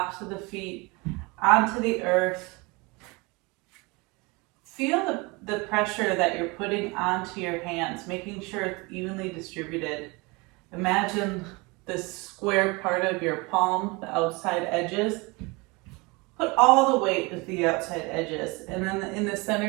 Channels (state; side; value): quieter; left; 26.3 dB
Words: of the feet onto the earth. Feel the pressure that you're putting onto your hands, making sure it's evenly distributed. Imagine the square part of your palm, the outside edges. Put all the weight at the outside edges, and then in the